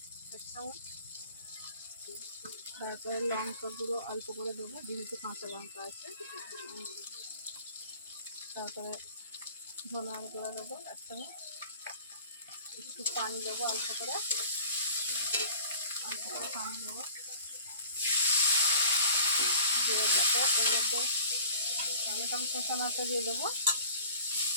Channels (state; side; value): inverted; both; correlation -0.45